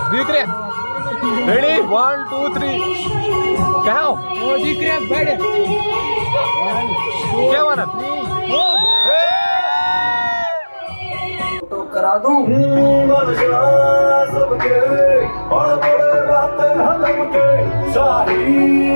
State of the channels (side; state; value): both; inverted; correlation -1.00